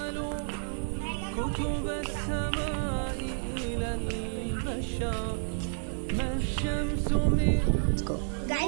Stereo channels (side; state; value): left; silent; digital silence